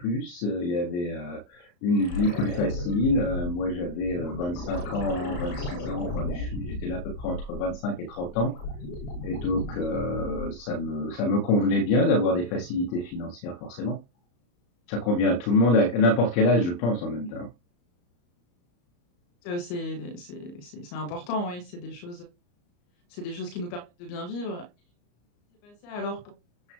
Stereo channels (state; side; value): late; right; 34 ms